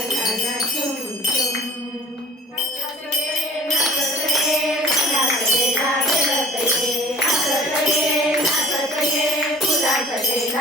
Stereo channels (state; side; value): normal; both; correlation 0.46